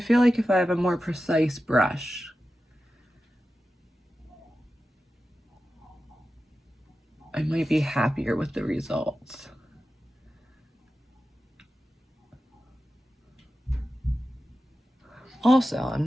feel like if I have a more precise brush, I might be happier with the results. Also,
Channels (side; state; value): both; normal; correlation 0.93